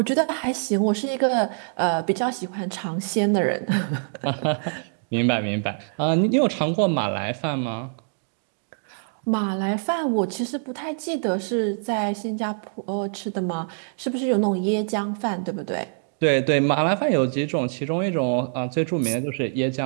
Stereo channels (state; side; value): silent; left; digital silence